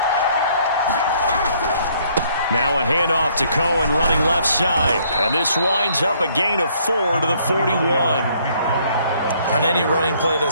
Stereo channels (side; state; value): both; inverted; correlation -0.65